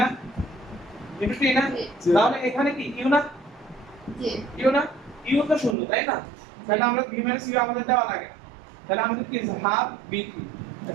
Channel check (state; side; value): drops out; left; at 5.8 s